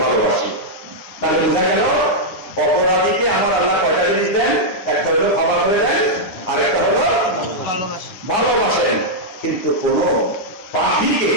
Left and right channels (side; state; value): right; late; 10 ms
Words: ভালোবাসি। তাহলে বোঝা গেল অপরাধীকে আমার আল্লাহ কয়টা জিনিস দেন? একটা হলো ক্ষমা করে দেন, আর একটা হলো ভালোবাসেন। কিন্তু কোন পাপীকে